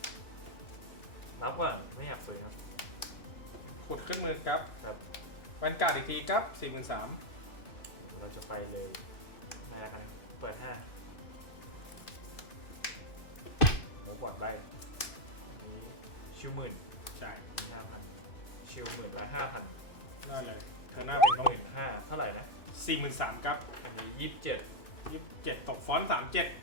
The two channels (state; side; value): late; right; 2.5 ms